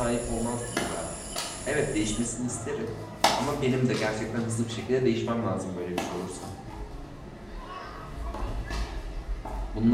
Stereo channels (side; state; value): both; identical; correlation 1.00